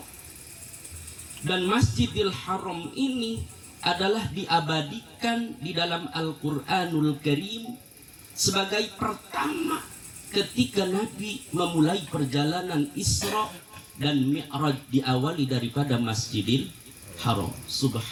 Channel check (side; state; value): both; identical; correlation 1.00